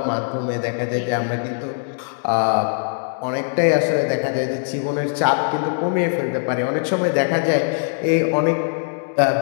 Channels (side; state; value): right; silent; digital silence